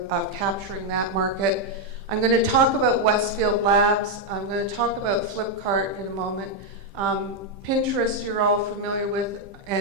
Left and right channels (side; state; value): left; late; 15 ms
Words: capturing that market. I'm going to talk about Westfield Labs. I'm going to talk about Flipkart in a moment. Pinterest you're all familiar with,